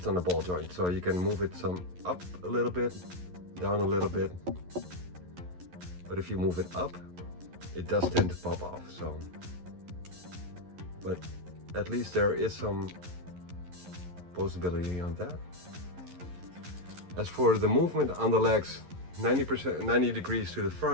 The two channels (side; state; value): left; late; 11 ms